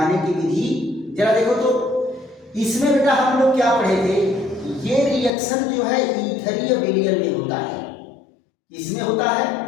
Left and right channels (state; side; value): drops out; right; at 5.3 s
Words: की विधि। जरा देखो तो इसमें बेटा हम लोग क्या पढ़े थे, ये रिएक्शन जो है ईथरीय विलयन में होता है, इसमें होता है